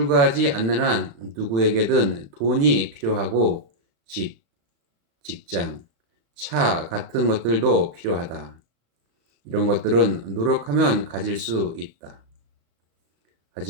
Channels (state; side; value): late; left; 35 ms